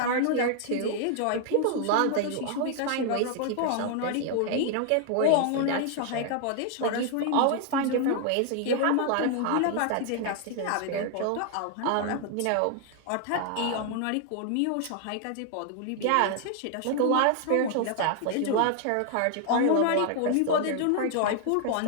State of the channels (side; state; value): both; different; correlation 0.00